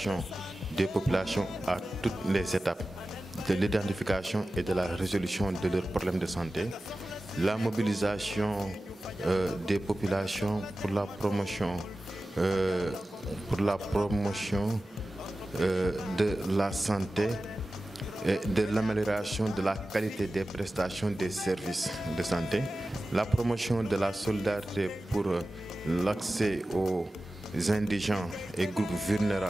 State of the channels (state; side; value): normal; both; correlation 0.95